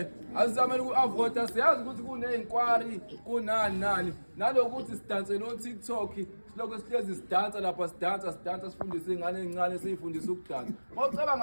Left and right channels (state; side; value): inverted; both; correlation -1.00